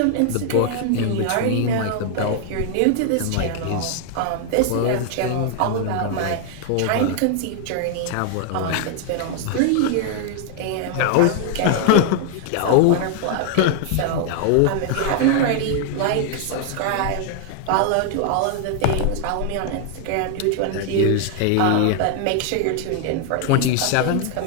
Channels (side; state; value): both; different; correlation 0.00